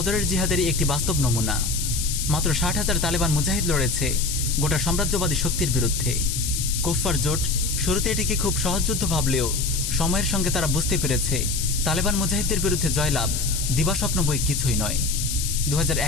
জিহাদেরই একটি বাস্তব নমুনা। মাত্র 60,000 তালেবান মুজাহিদ লড়েছে গোটা সাম্রাজ্যবাদী শক্তির বিরুদ্ধে। কুফার জোট শুরুতে এটিকে খুব সহজ যুদ্ধ ভাবলেও সময়ের সঙ্গে তারা বুঝতে পেরেছে তালেবান মুজাহিদদের বিরুদ্ধে জয়লাভ দিবাস্বপ্ন বই কিছুই নয়।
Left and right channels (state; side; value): noise; left; hiss, 3 dB below the sound